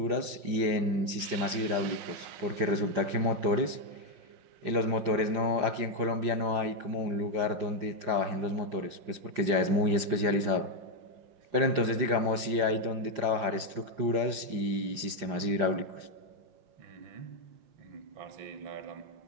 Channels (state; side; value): late; left; 5.7 ms